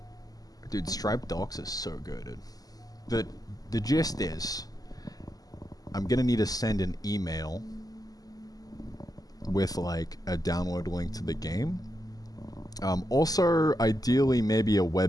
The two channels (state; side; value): late; right; 0.18 ms